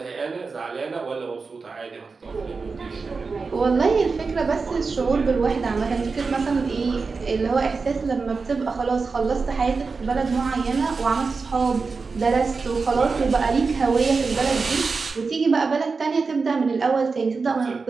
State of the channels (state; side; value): quieter; left; 4.5 dB